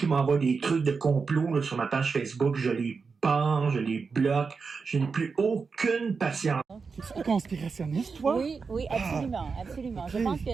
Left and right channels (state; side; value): quieter; left; 5.0 dB